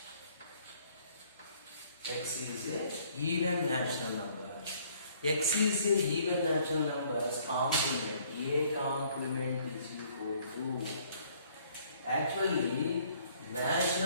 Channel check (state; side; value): inverted; both; correlation -0.61